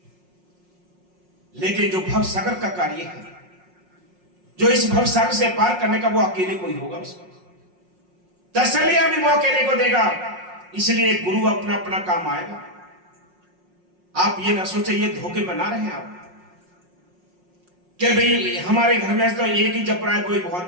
लेकिन जो भव सागर का कार्य है, जो इस भव सागर से पार करने का, वो अकेले कोई होगा। उसको तसल्लियां भी वो अकेले को देगा। इसलिए गुरु अपना अपना काम आएगा। आप ये ना सोचे ये धोखे बना रहे हैं आप कि भाई हमारे घर में तो एक ही जप रहा है, कोई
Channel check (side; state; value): left; late; 5.5 ms